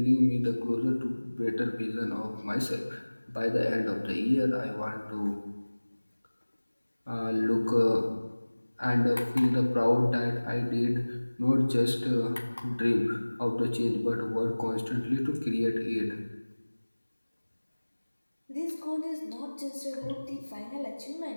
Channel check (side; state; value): both; inverted; correlation -1.00